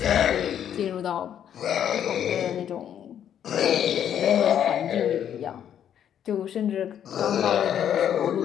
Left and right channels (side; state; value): right; quieter; 9.6 dB